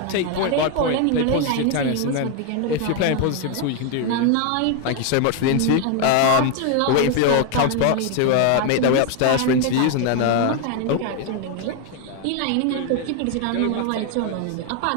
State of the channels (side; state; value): both; different; correlation 0.01